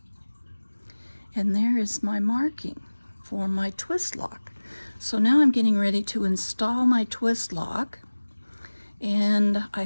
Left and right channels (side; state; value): both; inverted; correlation -1.00